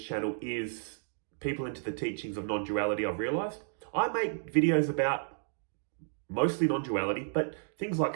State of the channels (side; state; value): left; silent; digital silence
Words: is people into the teachings of non-duality. I've realized I make videos about mostly non-duality, but things like